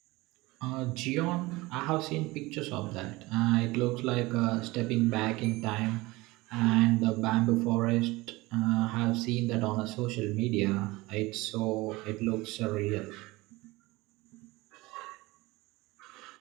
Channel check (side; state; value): left; quieter; 21.4 dB